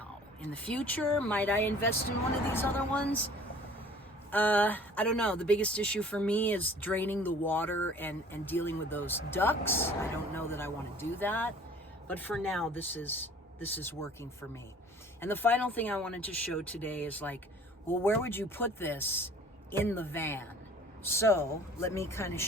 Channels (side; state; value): both; normal; correlation 0.49